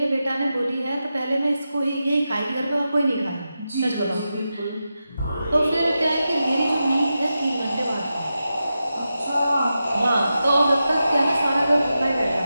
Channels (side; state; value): both; inverted; correlation -0.90